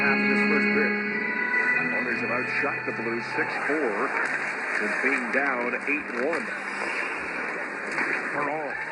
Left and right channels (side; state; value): both; identical; correlation 1.00